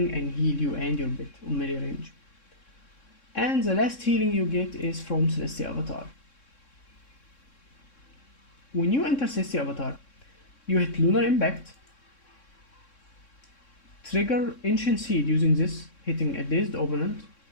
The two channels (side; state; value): right; late; 3.6 ms